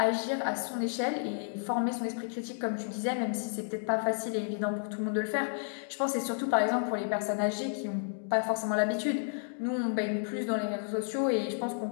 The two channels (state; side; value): silent; right; digital silence